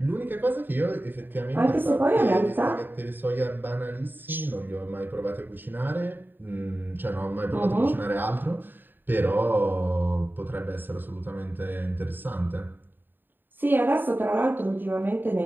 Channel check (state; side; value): late; left; 0.093 ms